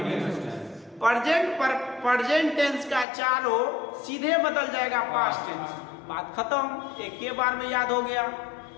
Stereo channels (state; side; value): drops out; right; at 3.1 s